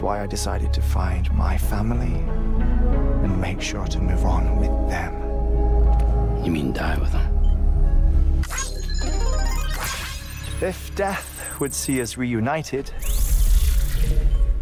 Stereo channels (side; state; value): both; identical; correlation 1.00